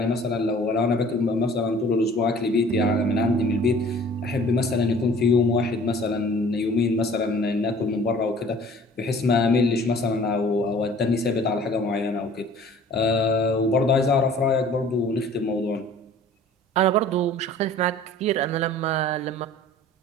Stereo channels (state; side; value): normal; both; correlation 0.49